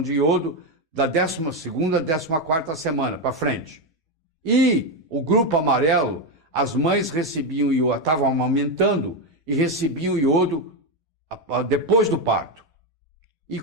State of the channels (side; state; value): both; normal; correlation 0.08